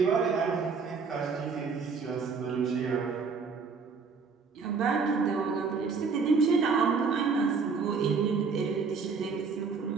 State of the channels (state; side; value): quieter; left; 5.1 dB